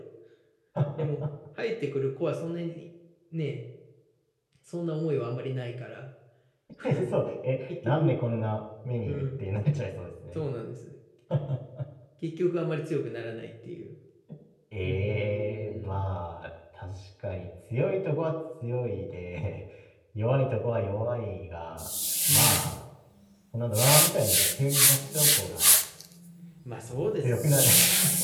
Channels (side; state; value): both; identical; correlation 1.00